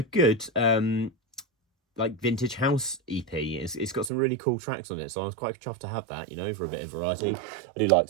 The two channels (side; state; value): left; drops out; at 4.1 s